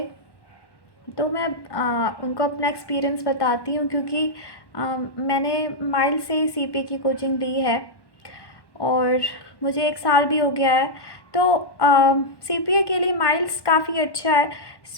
तो मैं उनको अपना एक्सपीरियंस बताती हूँ, क्योंकि मैंने माइल्स से ही सीपीए की कोचिंग ली है और मुझे 1 साल भी हो गया है। तो सीपीए के लिए माइल्स काफ़ी अच्छा है।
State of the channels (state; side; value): late; right; 1.1 ms